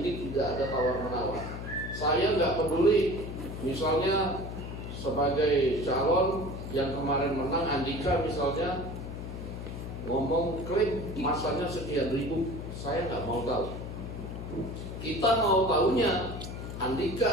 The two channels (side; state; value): left; noise; hum, 8 dB below the sound